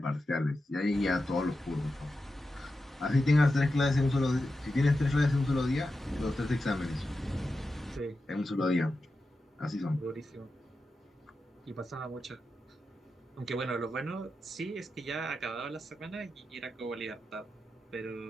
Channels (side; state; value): both; normal; correlation 0.90